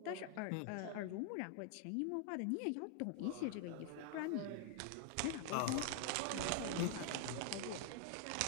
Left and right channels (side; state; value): both; different; correlation 0.00